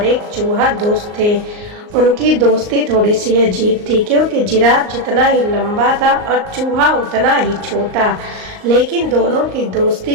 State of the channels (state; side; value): late; left; 38 ms